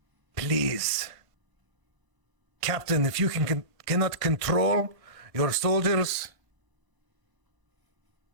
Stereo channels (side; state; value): left; late; 1.5 ms